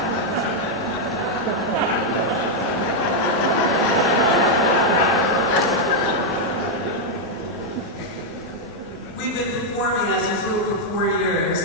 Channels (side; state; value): both; normal; correlation -0.01